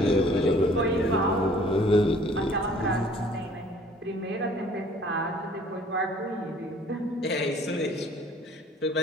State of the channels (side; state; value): both; normal; correlation 0.54